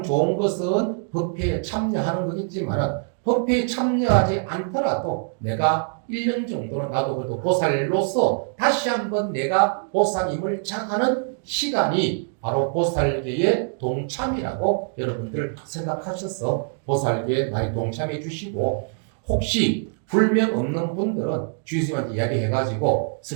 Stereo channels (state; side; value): silent; left; 63 dB below the other